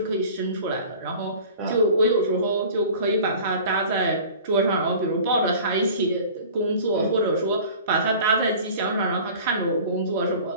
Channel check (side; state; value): both; inverted; correlation -0.43